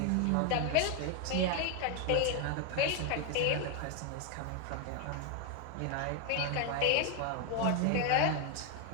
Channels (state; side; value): different; both; correlation 0.01